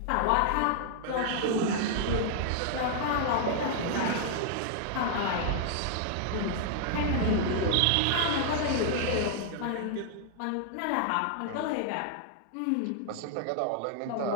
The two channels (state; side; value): different; both; correlation -0.01